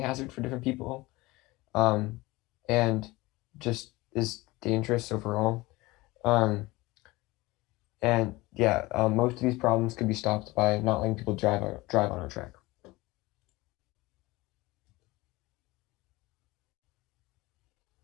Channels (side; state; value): right; quieter; 21.1 dB